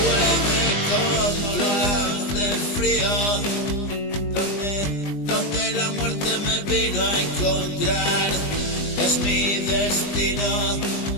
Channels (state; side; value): late; right; 20 ms